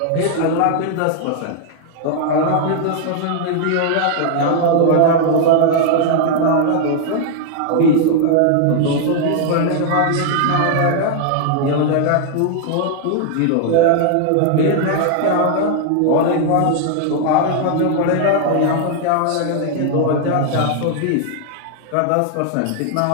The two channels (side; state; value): both; different; correlation -0.01